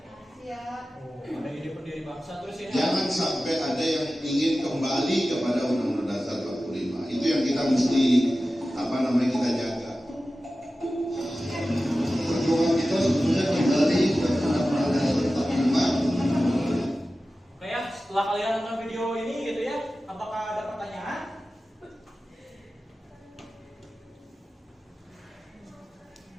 Ada ide pendiri bangsa terus ini. Jangan sampai ada yang ingin kembali kepada Undang-Undang Dasar 45. Itu yang kita mesti kita jaga. Perjuangan kita sebetulnya kembali kepada Undang-Undang Dasar 45. Oke ya, setelah kalian nonton video ini gitu ya, apakah ada pertanyaan?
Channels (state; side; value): normal; both; correlation 0.95